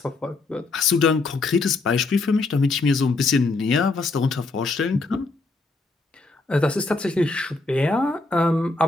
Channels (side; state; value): right; quieter; 3.5 dB